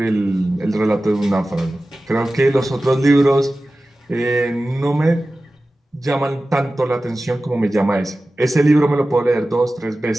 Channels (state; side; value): normal; both; correlation 0.95